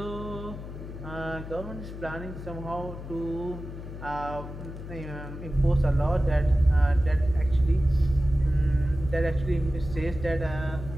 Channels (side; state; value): left; noise; hum, 10 dB below the sound